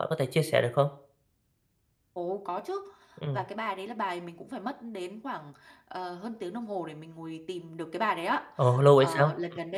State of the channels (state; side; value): identical; both; correlation 1.00